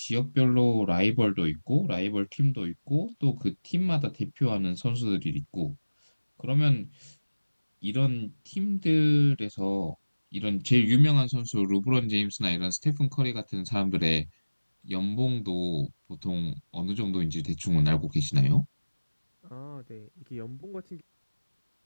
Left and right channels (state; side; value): inverted; both; correlation -1.00